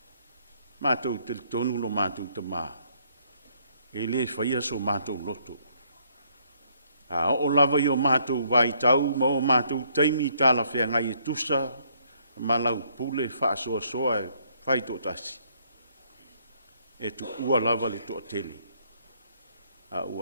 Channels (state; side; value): inverted; both; correlation -0.68